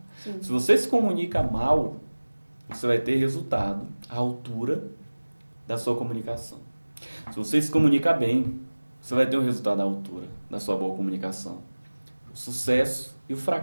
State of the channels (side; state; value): both; inverted; correlation -1.00